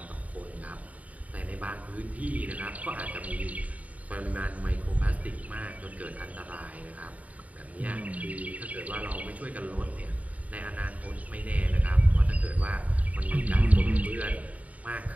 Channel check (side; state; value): left; late; 0.070 ms